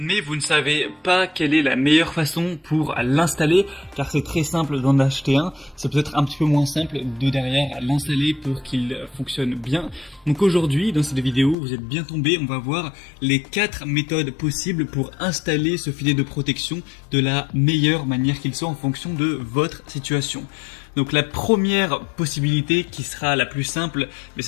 vous ne savez pas quelle est la meilleure façon pour l'installer car c'est très simple d'en acheter un, c'est peut-être un petit peu moins simple de derrière l'installer pour qu'il fonctionne bien. Donc aujourd'hui dans cette vidéo vous êtes bien tombés, on va voir les 4 méthodes possibles pour installer ce filet de protection de la meilleure manière qu'il soit en fonction de votre situation. Donc la première possibilité qui sera la plus simple, mais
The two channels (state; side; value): drops out; right; at 11.6 s